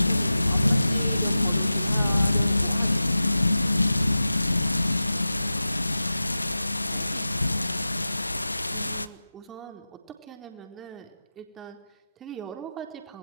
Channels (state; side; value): inverted; both; correlation -0.95